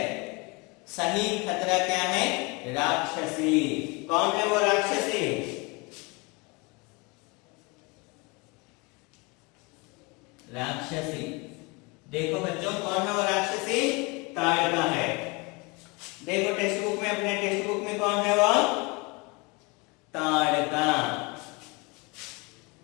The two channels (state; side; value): quieter; right; 27.5 dB